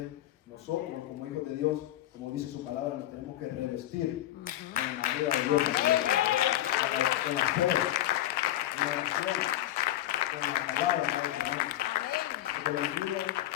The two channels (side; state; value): right; quieter; 14.0 dB